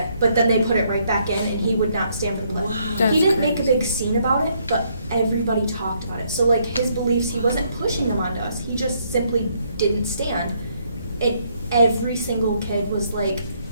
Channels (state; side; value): inverted; both; correlation -0.71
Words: but then they put it right back in, and he would not stand for the pledge. Wow. He didn't make a big scene about it, but everybody talked about it. So like his beliefs, he wasn't pushing them onto us. He just simply didn't stand. And every single kid was like